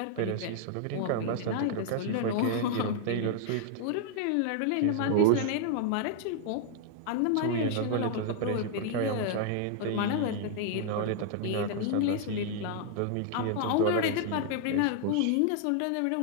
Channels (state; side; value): different; both; correlation -0.01